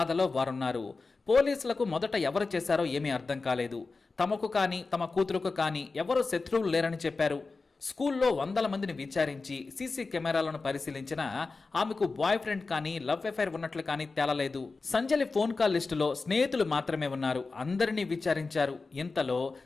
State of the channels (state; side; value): quieter; right; 4.0 dB